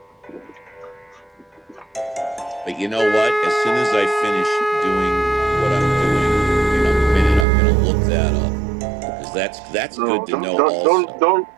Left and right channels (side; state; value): left; drops out; at 7.5 s